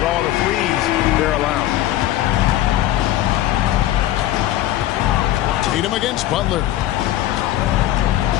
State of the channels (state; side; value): quieter; right; 14.0 dB